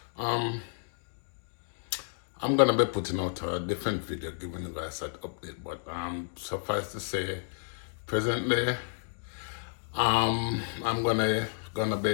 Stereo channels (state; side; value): silent; right; digital silence